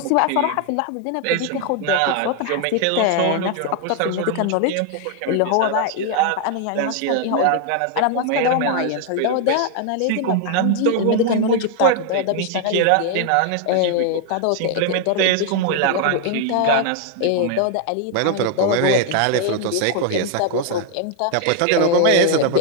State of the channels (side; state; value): both; different; correlation 0.00